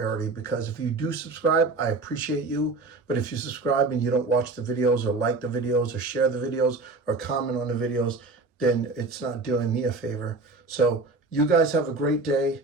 because if you do subscribe, I appreciate you. But if you subscribe and you don't watch the videos or like the videos or share the videos or comment on the videos, then it's not doing me a favor. So you guys have a great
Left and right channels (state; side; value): quieter; left; 3.5 dB